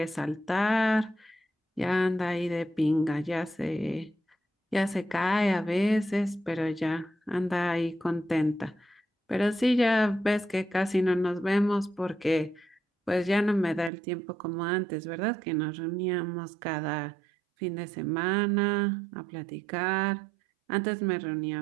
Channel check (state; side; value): drops out; left; at 13.9 s